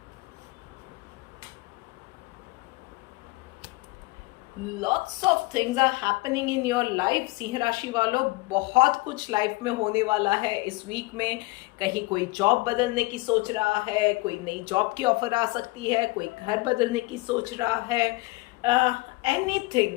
lots of things are happening in your life. सिंह राशि वालों, बहुत कुछ लाइफ में होने वाला है इस वीक में। कहीं कोई जॉब बदलने की सोच रहा है, कोई नई जॉब की ऑफर आ सकती है, कोई घर बदलने की सोच रहा है,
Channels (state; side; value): quieter; right; 22.6 dB